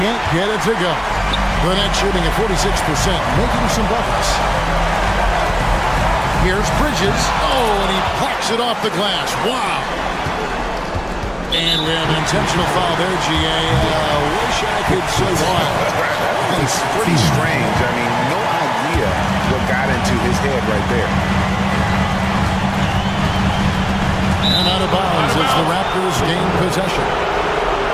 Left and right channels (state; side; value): identical; both; correlation 1.00